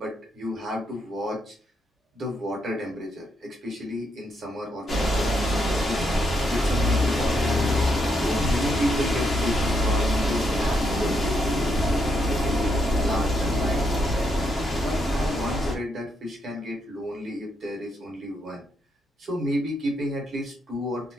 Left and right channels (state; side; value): normal; both; correlation 0.79